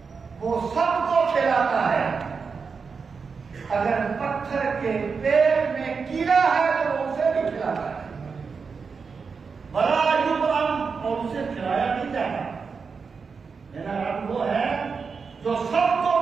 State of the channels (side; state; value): left; quieter; 5.3 dB